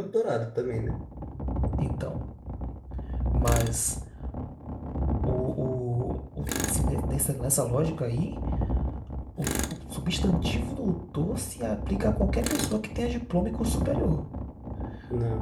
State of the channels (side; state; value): both; identical; correlation 1.00